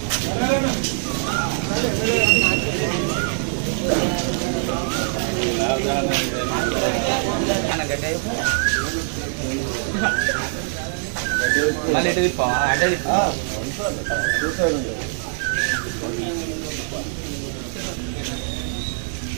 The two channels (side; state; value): left; silent; digital silence